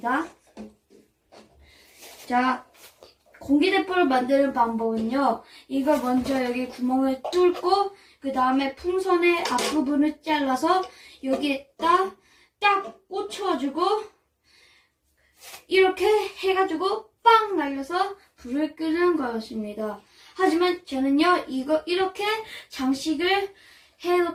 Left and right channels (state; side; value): identical; both; correlation 1.00